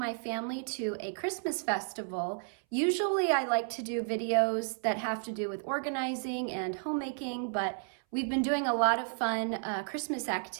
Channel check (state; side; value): silent; left; 56 dB below the other